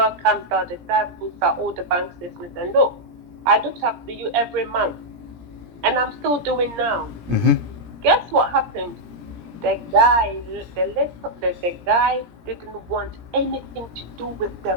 comes out, the dad puts out all the bank statements and look, I looked after you every month. And I'm still doing now. Guess what happened? The guy didn't want anything to do with the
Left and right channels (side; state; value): left; late; 17 ms